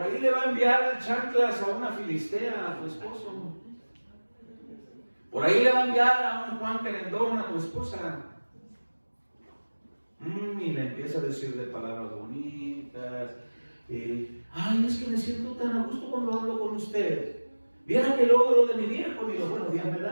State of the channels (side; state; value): both; inverted; correlation -1.00